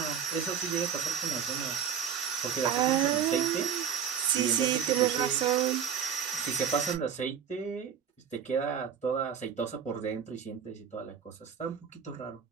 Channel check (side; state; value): left; quieter; 7.8 dB